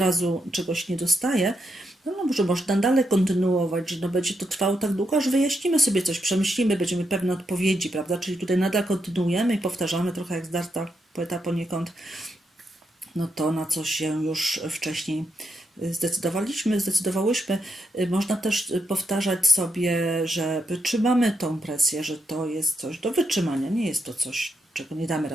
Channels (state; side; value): normal; both; correlation 0.81